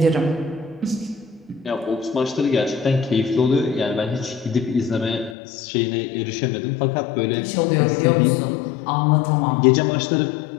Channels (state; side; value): drops out; right; at 5.4 s